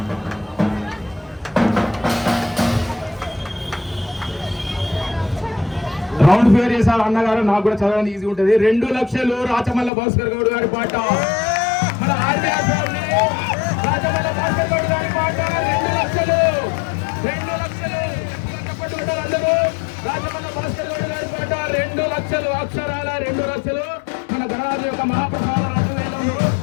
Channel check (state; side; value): drops out; right; at 9.9 s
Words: రౌండ్ ఫిగర్ చేశారు అన్నగారు, నాకు కూడా చదవడానికి ఈజీ ఉంటుంది. 2 లక్షలు రాచమల్ల భాస్కర్ గౌడ్ గారి పాట. మన ఆర్బీఆర్ ఫ్యామిలీ రాచమల్ల భాస్కర్ గౌడ్ గారి పాట 2 లక్షలు. 2 లక్షలు చెప్పట్టుకుంటారు అందరూ. రాచమల్ల భాస్కర్ గౌడ్ గారి పాట 2 లక్షలు, అక్షరాల 2 లక్షలు. మన గణరాజు యొక్క మహాప్రసాద 2,000.